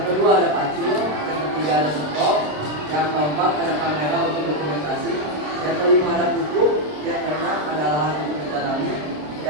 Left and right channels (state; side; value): late; left; 27 ms